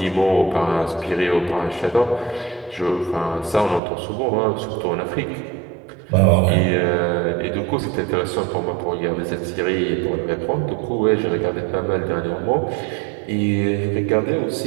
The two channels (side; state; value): left; drops out; at 3.8 s